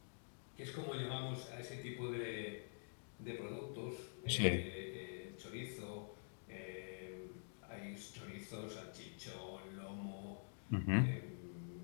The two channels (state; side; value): silent; right; digital silence